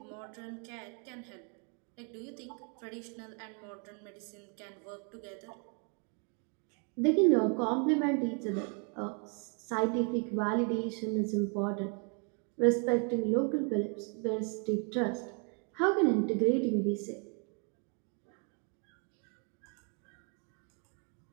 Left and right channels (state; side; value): quieter; left; 39.2 dB